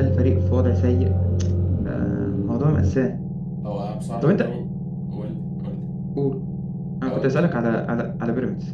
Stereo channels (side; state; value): both; identical; correlation 1.00